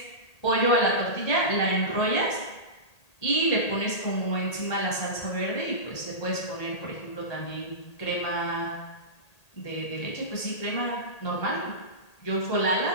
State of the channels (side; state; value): right; late; 1.8 ms